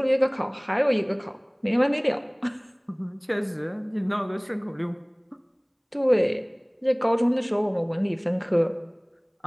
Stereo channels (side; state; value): both; identical; correlation 1.00